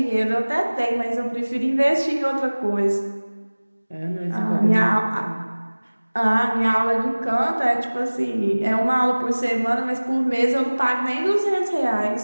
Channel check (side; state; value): both; inverted; correlation -1.00